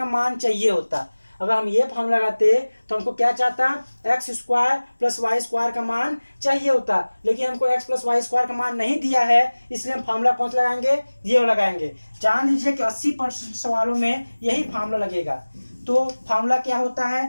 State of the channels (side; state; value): both; inverted; correlation -1.00